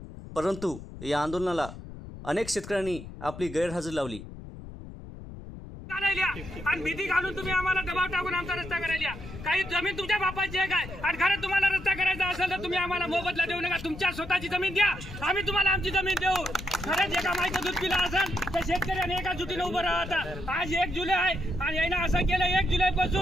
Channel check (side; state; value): left; noise; rumble, 13 dB below the sound